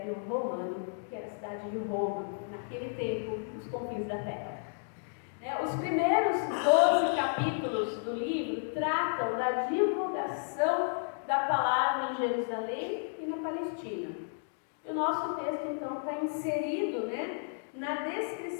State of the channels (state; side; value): silent; right; digital silence